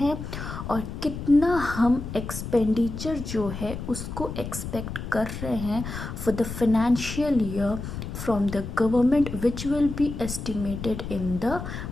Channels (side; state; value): left; noise; rumble, 7 dB below the sound